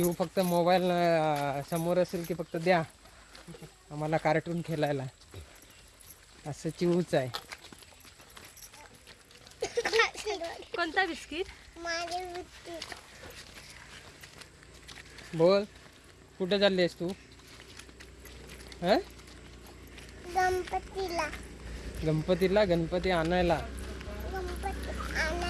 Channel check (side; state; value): both; identical; correlation 1.00